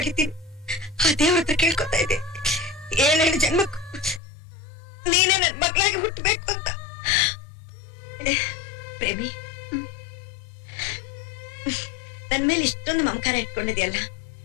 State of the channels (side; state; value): right; drops out; at 4.2 s